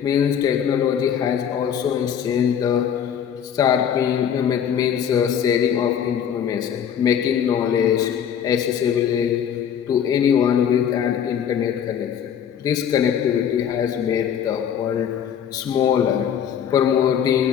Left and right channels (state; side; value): quieter; right; 8.6 dB